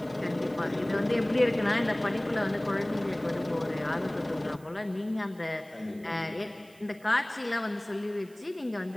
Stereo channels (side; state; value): right; noise; hiss, 26 dB below the sound